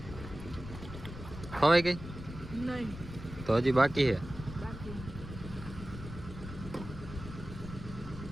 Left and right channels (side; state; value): left; noise; rumble, 11 dB below the sound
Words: ખવાઈ ગઈ? નહીં તો હજી બાકી છે. બાકી.